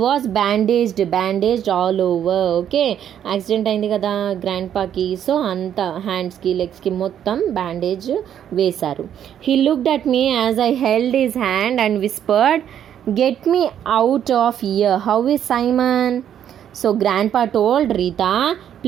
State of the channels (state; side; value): quieter; left; 9.7 dB